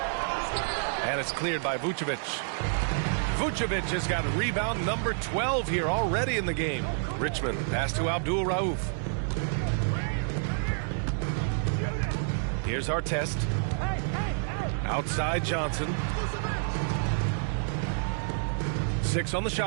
And it's cleared by Vucevic. Vucevic has got rebound number 12 here already in the game. Richmond pass to Abdul Rauf. Here's Artest. Outside Johnson. 6 on the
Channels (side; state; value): left; silent; 59 dB below the other